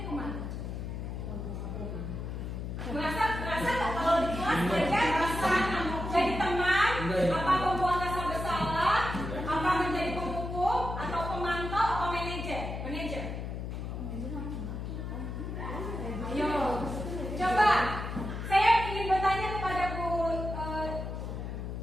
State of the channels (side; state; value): left; noise; hum, 5 dB below the sound